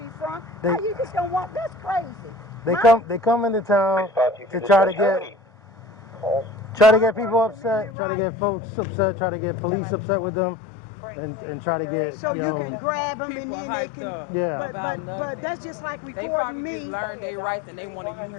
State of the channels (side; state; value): right; drops out; at 7.9 s